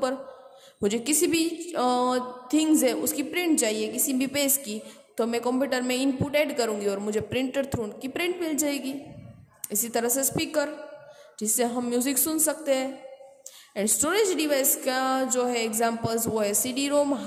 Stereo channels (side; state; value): both; identical; correlation 1.00